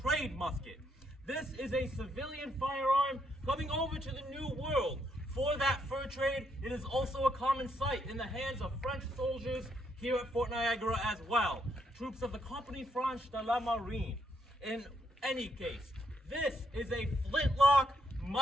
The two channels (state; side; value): normal; both; correlation 0.76